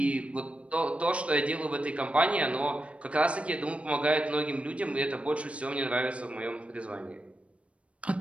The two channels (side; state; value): left; late; 0.062 ms